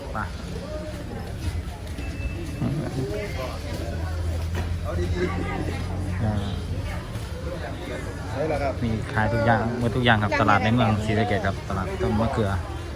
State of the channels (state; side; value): identical; both; correlation 1.00